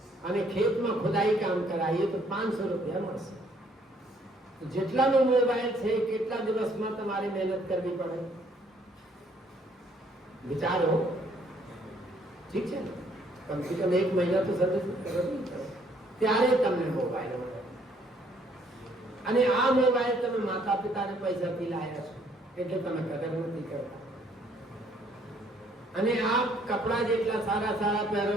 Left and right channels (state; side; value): normal; both; correlation 0.65